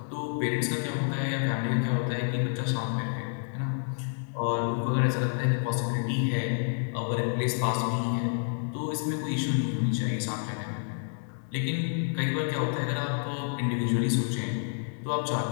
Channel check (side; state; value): right; silent; digital silence